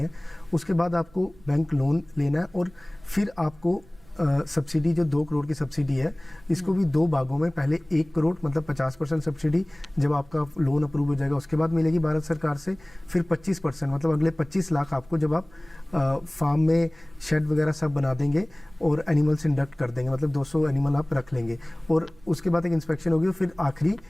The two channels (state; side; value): noise; right; rumble, 27 dB below the sound